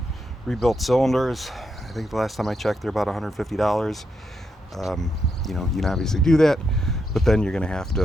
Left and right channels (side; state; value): both; normal; correlation 0.82